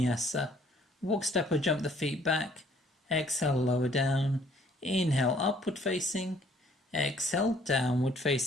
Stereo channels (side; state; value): both; normal; correlation 0.60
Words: Walk, step or jump the feet back. Exhale, lower down. Inhale, upward facing. Exhale, downward